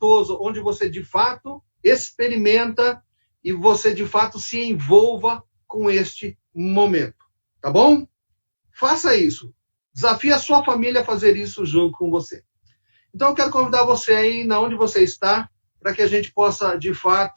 onde você de fato experimenta e você de fato se envolva com este momento, tá bom? Faça isso. Desafie a sua família a fazer isso junto com você. Então eu quero convidar você aí, na onde você está, para que a gente possa de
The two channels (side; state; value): both; inverted; correlation -1.00